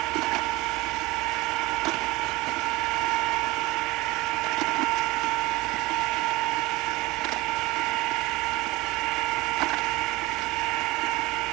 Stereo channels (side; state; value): left; quieter; 20.8 dB